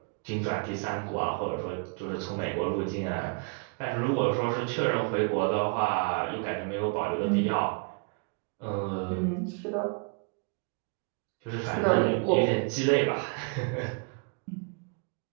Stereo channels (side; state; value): left; quieter; 36.2 dB